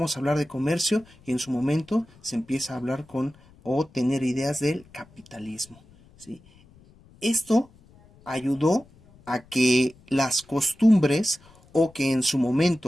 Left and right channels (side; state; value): left; noise; rumble, 27 dB below the sound